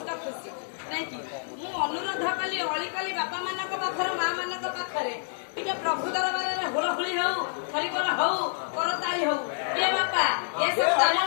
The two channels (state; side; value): silent; right; 59 dB below the other